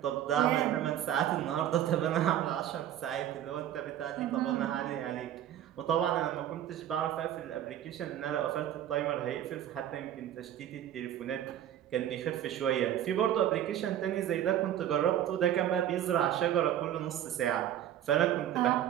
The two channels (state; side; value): quieter; left; 11.2 dB